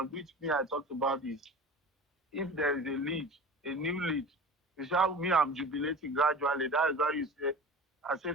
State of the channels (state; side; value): normal; both; correlation 0.36